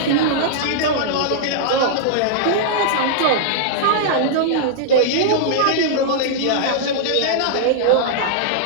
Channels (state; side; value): different; both; correlation -0.02